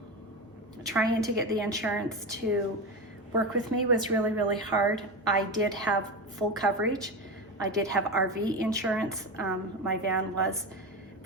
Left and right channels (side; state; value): both; normal; correlation 0.20